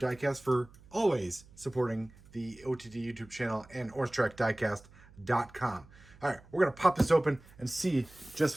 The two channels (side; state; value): right; noise; hum, 24 dB below the sound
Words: for always supporting the OTD YouTube channel and OrangeTrackDiecast.com. All right, we're going to pop this open and see